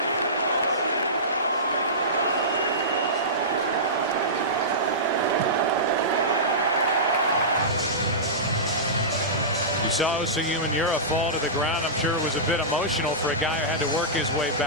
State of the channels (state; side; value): normal; both; correlation -0.18